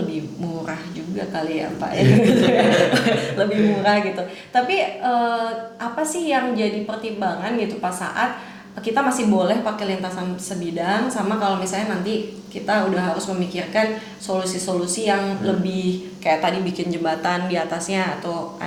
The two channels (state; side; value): identical; both; correlation 1.00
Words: murah juga kali ya Pak ya. Lebih murah gitu. Tapi apa sih yang jadi pertimbangan gitu pas saat kita masih boleh pakai lintasan sebidang, sama kalau misalnya nanti kita udah harus memikirkan solusi-solusi yang lebih kayak tadi bikin jembatan di atasnya atau